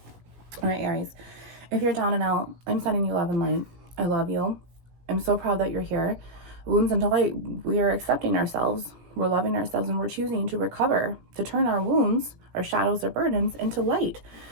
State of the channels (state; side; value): late; left; 17 ms